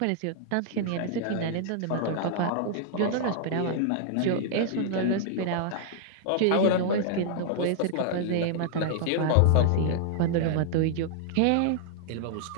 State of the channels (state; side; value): different; both; correlation -0.01